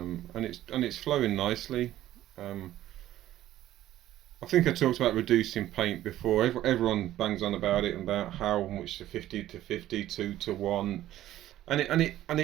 it's flowing nicely. I think I talked about reducing paint before. Everyone bangs on about it, and about how much the 50 to 50, 2 to 1. And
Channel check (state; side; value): quieter; left; 13.6 dB